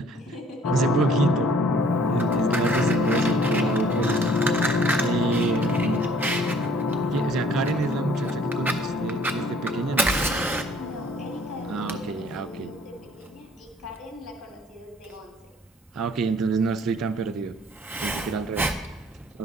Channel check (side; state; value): both; normal; correlation 0.57